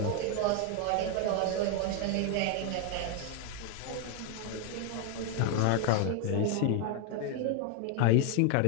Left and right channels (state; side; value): different; both; correlation 0.01